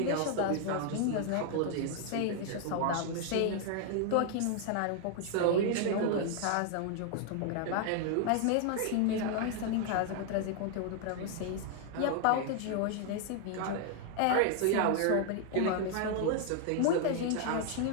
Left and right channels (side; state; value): both; different; correlation 0.00